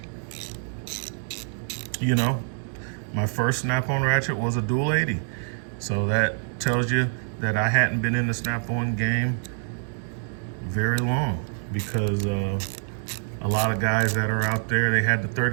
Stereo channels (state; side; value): silent; left; digital silence